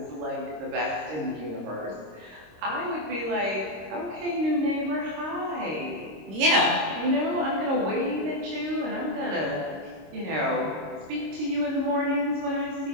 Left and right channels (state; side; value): late; left; 26 ms